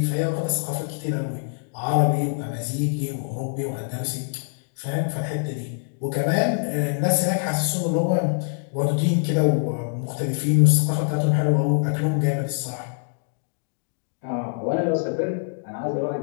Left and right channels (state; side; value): silent; right; digital silence